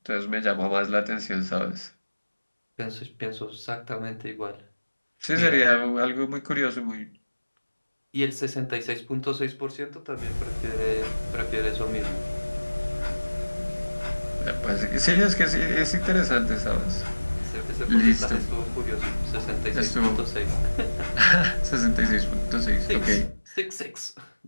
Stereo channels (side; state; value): both; inverted; correlation -1.00